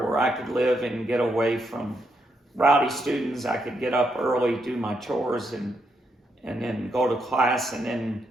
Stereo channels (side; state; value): both; normal; correlation 0.79